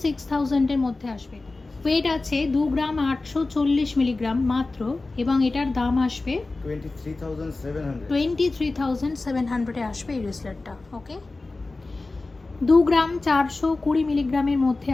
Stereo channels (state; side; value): quieter; right; 3.4 dB